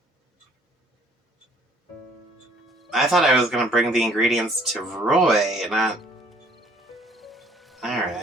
I thought I was gonna bring the ingredients to Roy, not...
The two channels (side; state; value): both; normal; correlation 0.59